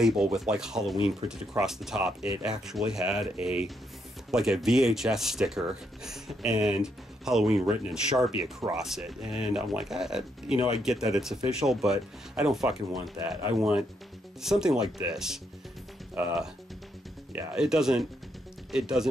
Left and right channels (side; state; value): both; normal; correlation 0.77